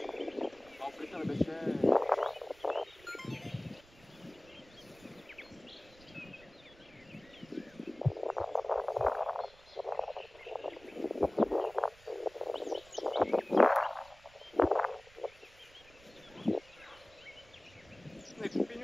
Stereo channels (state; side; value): noise; right; rumble, 25 dB below the sound